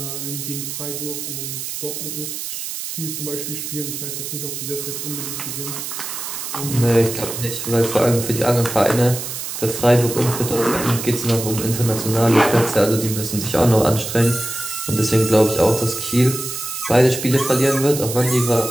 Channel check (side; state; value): right; noise; hiss, 6 dB below the sound